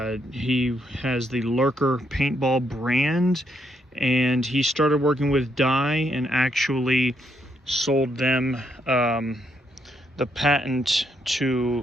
He has the Lurker paintball brand, and he started working with Dye and actually sold them the patent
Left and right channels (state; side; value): normal; both; correlation 0.75